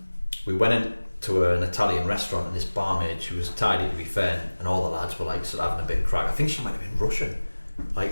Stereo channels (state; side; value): inverted; both; correlation -1.00